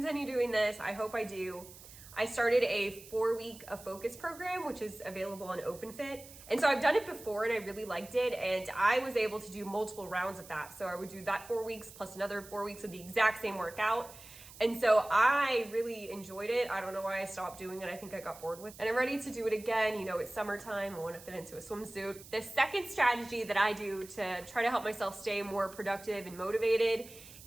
doing this. I hope I do. I started a 4-week focus program, which is available on OpenFit. And so I've done it before and I really liked it. And I was able to do multiple rounds of that. So I would do that 4 weeks plus another 4 weeks of the exact same workout. And so I really enjoyed it. I don't know why I stopped doing it. I think I got bored with it. And I'm ready to do it again. It's summertime. I want to fit into a swimsuit. The second strategy that I do to try to help myself stay more productive and motivated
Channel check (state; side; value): noise; right; hiss, 18 dB below the sound